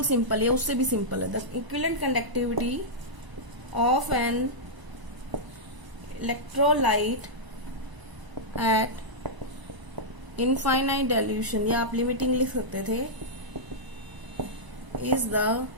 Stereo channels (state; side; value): late; left; 1.0 ms